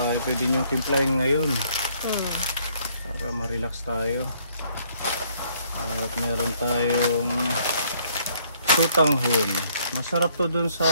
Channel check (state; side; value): inverted; both; correlation -0.66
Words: ay pwede nyo timplahin ngayon. Para ma-relax tayo. At meron tayong tutanghon. Masarap to dun